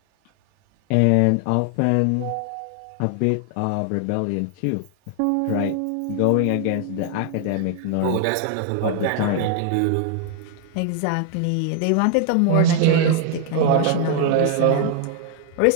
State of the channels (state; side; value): different; both; correlation 0.00